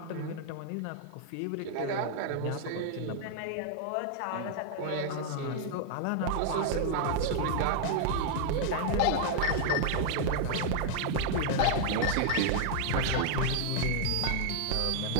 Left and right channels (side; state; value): both; different; correlation -0.01